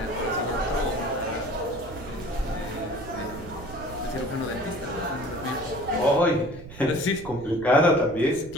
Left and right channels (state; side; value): noise; right; rumble, 15 dB below the sound